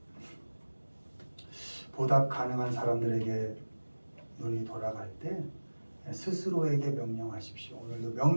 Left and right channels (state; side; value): inverted; both; correlation -1.00